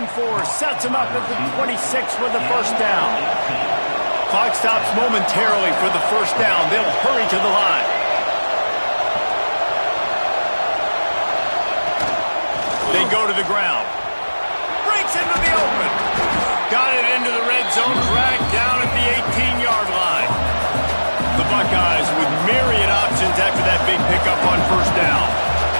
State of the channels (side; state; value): both; inverted; correlation -1.00